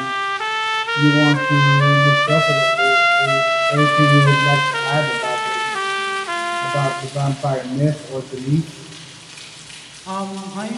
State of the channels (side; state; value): both; identical; correlation 1.00